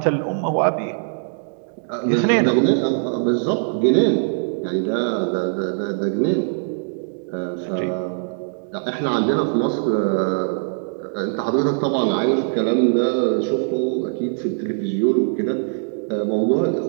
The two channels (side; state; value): left; silent; digital silence